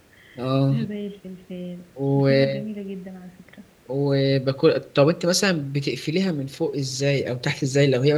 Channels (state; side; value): identical; both; correlation 1.00